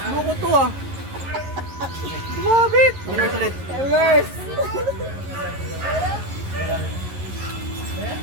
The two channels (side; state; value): left; late; 11 ms